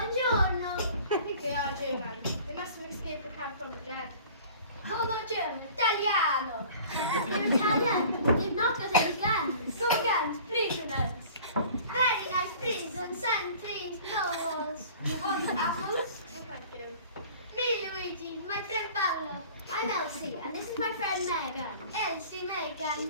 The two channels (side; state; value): both; inverted; correlation -0.46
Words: I think they are German. They must have escaped the camp from the dead. Oh, not German. Italiano. They're Italian. They've not got any guns. No guns. Prisoners. Very nice prison. Sentries. Novels. You want apples? No, thank you. Me, Luigi. My friend Paolo. I'm Elsie, and this is my friend Megan. Elsie, Megan.